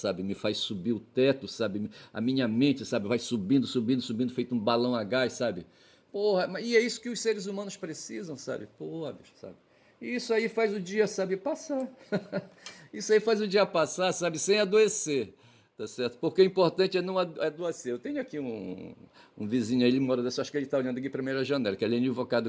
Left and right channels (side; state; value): both; identical; correlation 1.00